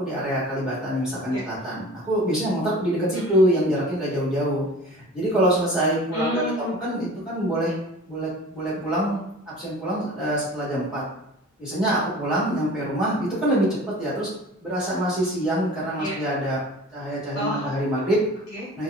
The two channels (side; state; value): both; normal; correlation 0.42